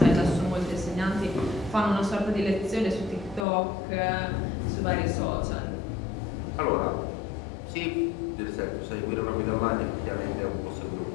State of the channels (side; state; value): right; drops out; at 3.5 s